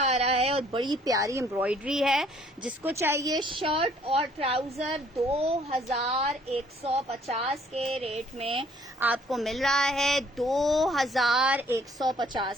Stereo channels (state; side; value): normal; both; correlation 0.61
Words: रहा है और बड़ी प्यारी एम्ब्रॉयडरी है। जिसको चाहिए शर्ट और ट्राउजर 2150 के रेट में आपको मिल रहा है